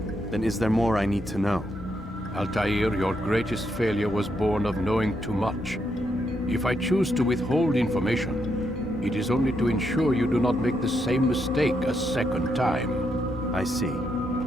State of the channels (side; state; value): both; normal; correlation 0.79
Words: Then is there more I need to know? Altair, your greatest failure was born of knowing too much. If I choose to withhold information, it is only to ensure you do not make the same mistake a second time. I see.